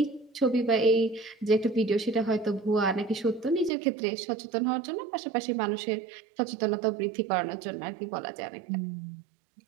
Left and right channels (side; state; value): left; drops out; at 3.7 s